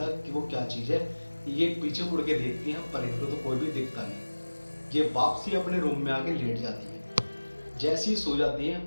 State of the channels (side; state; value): both; inverted; correlation -1.00